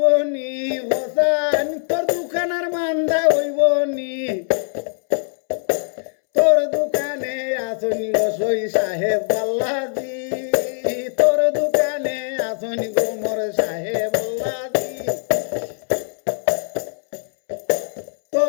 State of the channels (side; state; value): right; silent; 65 dB below the other